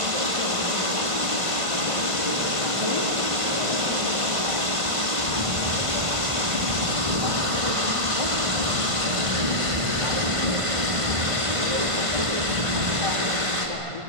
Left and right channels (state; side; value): late; left; 1.5 ms